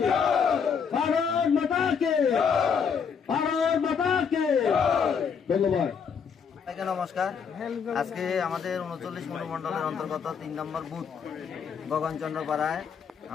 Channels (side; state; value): right; quieter; 6.6 dB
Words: ভারত মাতা কে ভারত মাতা কে ধন্যবাদ। নমস্কার। আজকে আমাদের 39 মণ্ডলের অন্তর্গত 3 নম্বর বুথ গগনচন্দ্র পাড়ায়